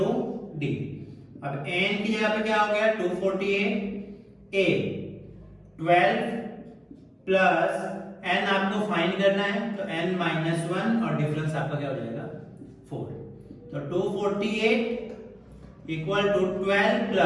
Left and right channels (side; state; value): both; identical; correlation 1.00